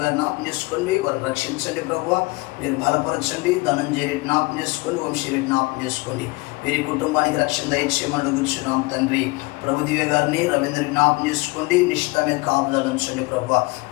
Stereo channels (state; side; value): quieter; right; 24.7 dB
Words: గారు జ్ఞాపకం చేసుకోండి. వారు రక్షించండి ప్రభువా. మీరు బలపరచండి. ధనంజయ రెడ్డి జ్ఞాపకం చేసుకోండి. వంశీ రెడ్డి జ్ఞాపకం చేసుకోండి. వీరి కుటుంబానికి రక్షణ దయచేయమని అడుగుచున్నాం తండ్రి. ప్రభు దివ్య గారిని రవీంద్రని జ్ఞాపకం చేసుకోండి, నిశ్చితమే కాపుదల ఉంచండి ప్రభు.